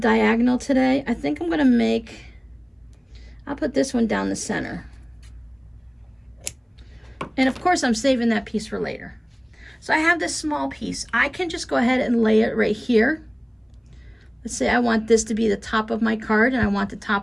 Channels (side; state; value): both; identical; correlation 1.00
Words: today. I think I'm gonna I'll put this one down the center. And of course, I'm saving that piece for later. So I have this small piece. I can just go ahead and lay it right here. Let's say I want this to be the top of my card and I want the